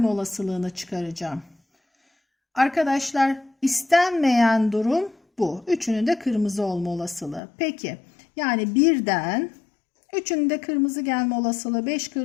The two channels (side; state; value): right; drops out; at 7.4 s